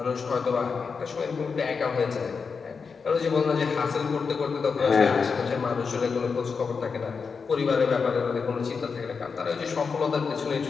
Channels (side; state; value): right; quieter; 5.3 dB